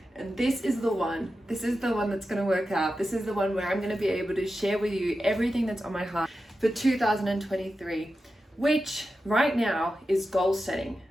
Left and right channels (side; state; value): both; normal; correlation 0.91